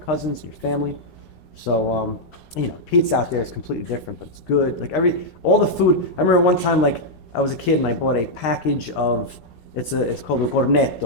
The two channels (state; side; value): late; right; 13 ms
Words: and your family. So, you know, pizza out there is completely different, but it's good. Like all the food. I remember one time, like I was a kid and I bought a package of, it's called a